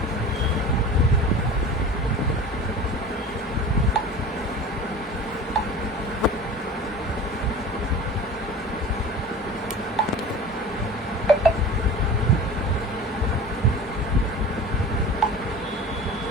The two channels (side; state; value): both; normal; correlation 0.38